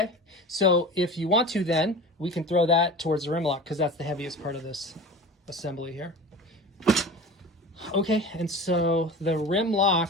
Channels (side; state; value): both; normal; correlation 0.35